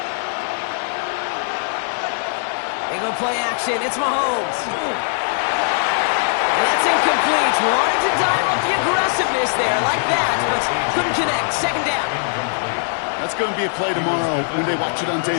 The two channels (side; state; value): right; silent; 62 dB below the other